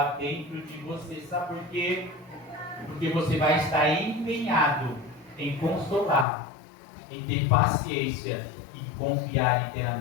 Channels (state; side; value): drops out; right; at 6.2 s